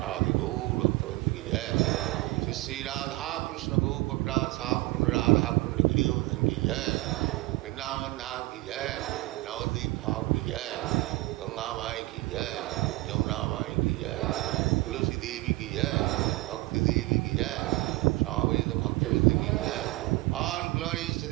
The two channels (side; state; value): left; quieter; 20.6 dB